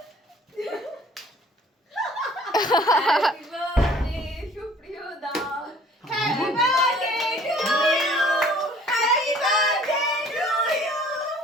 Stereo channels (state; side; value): normal; both; correlation 0.53